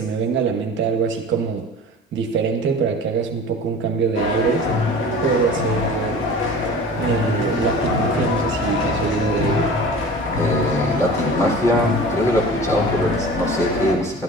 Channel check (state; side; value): normal; both; correlation 0.39